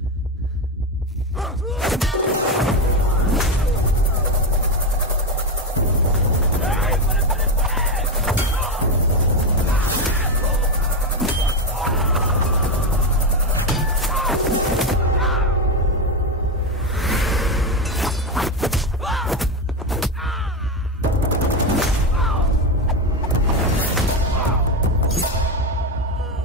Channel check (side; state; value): both; normal; correlation 0.12